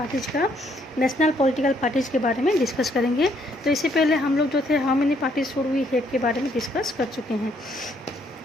का नेशनल पॉलिटिकल पार्टीज के बारे में डिस्कस करेंगे। तो इससे पहले हम लोग जो थे how many parties should we have के बारे में डिस्कस कर चुके हैं।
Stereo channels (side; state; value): both; normal; correlation 0.69